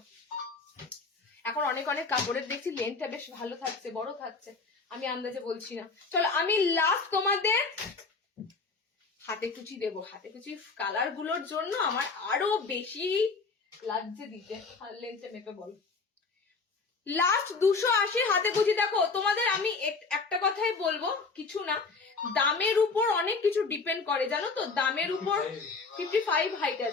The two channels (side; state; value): right; quieter; 4.3 dB